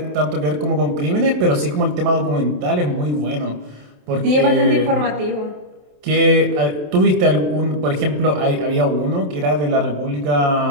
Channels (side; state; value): left; late; 27 ms